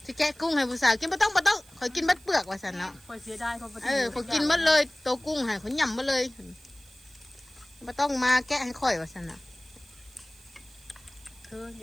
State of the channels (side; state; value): right; noise; hiss, 25 dB below the sound